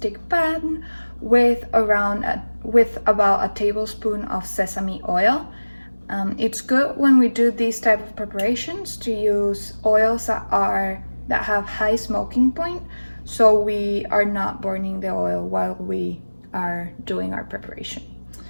pan with about a tablespoon of sesame oil. It's good when we do these type of preparations to use oils that have high smoking point, so we are not burning the oil while we are doing our preparation.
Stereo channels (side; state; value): both; inverted; correlation -1.00